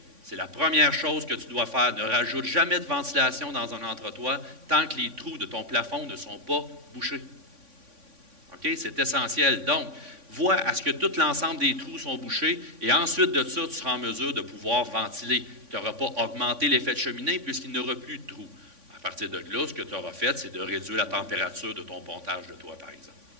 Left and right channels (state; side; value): late; left; 3.5 ms